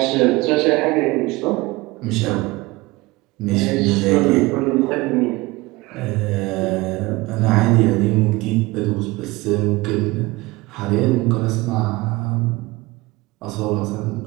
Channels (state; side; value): quieter; left; 21.7 dB